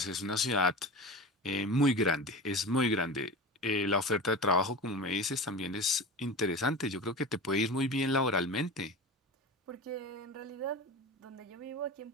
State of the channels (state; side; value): normal; both; correlation 0.30